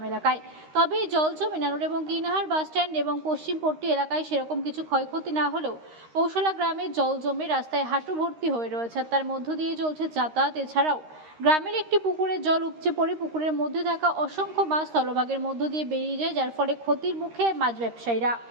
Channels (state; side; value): late; left; 13 ms